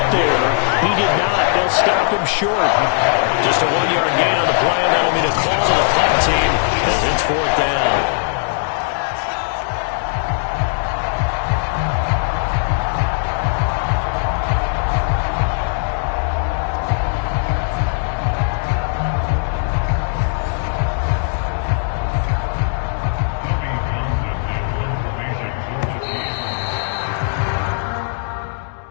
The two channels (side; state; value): right; silent; digital silence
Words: there. He did not. They'll stop him short. Just a 1-yard gain on the play, and that'll be the call to the punt team as it's 4th down.